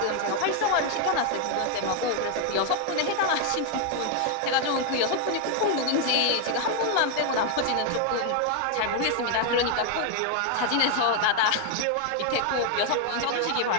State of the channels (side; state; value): both; different; correlation 0.00